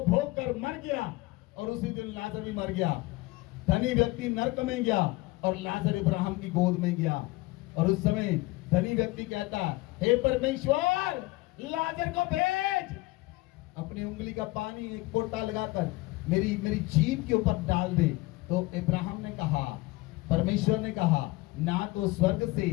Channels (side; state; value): right; quieter; 21.2 dB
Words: भोग कर मर गया, और उसी दिन लाजर भी मर गया। धनी व्यक्ति नरक में गया और लाजर इब्राहिम की गोद में गया। और उस समय धनी व्यक्ति कहता, हे परमेश्वर लाजर को भेज, अपनी उंगली का पानी एक फोटा लगाकर मेरी जीभ के ऊपर डाल दे। तो इब्राहिम ने कहा, परमेश्वर ने कहा, ना तो स्वर्ग से